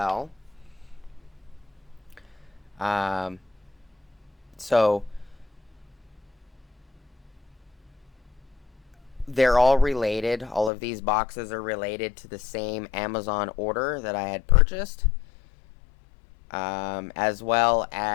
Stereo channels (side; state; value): right; drops out; at 10.7 s